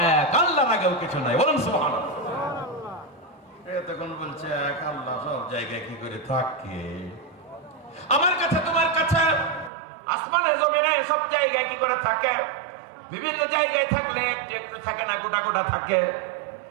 এক, আল্লাহর আগেও কিছু নাই। বলুন সুবহানাল্লাহ। তখন বলছে এক আল্লাহ সব জায়গায় কি করে থাকে? আমার কাছে তোমার কাছে আসমানে জমিনে সব জায়গায় কি করে থাকে? বিভিন্ন জায়গায় থাকলে একটু একটু থাকে না, গোটা গোটা থাকে।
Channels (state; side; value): drops out; left; at 9.7 s